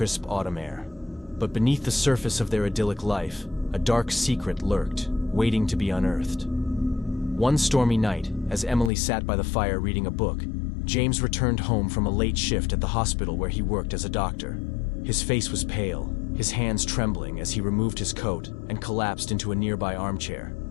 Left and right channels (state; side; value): drops out; right; at 8.9 s